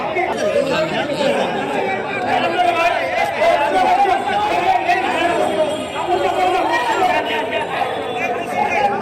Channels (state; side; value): identical; both; correlation 1.00